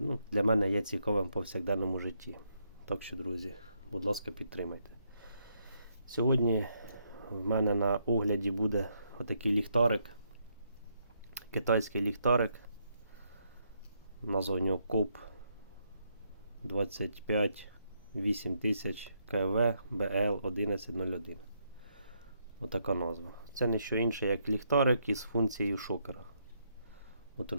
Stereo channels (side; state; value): both; inverted; correlation -0.76